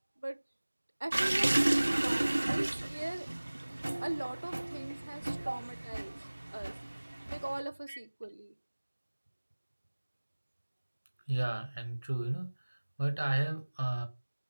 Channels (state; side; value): inverted; both; correlation -1.00